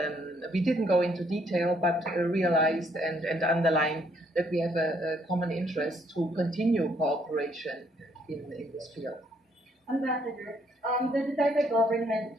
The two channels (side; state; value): both; normal; correlation 0.69